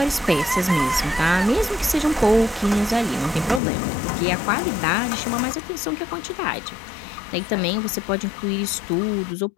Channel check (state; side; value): drops out; right; at 3.6 s